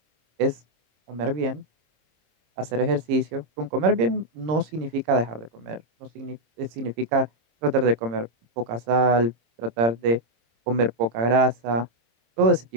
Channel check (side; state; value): left; late; 26 ms